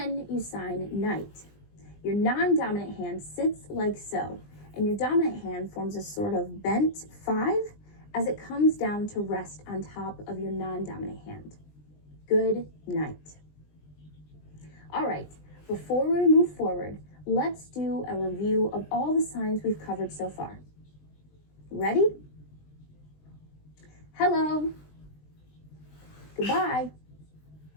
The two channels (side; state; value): right; late; 20 ms